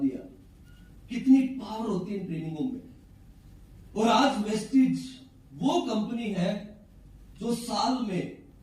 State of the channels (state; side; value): identical; both; correlation 1.00